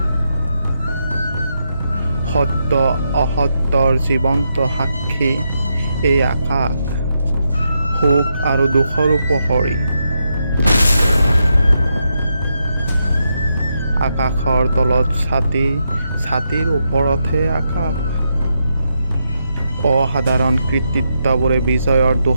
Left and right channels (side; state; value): both; inverted; correlation -0.83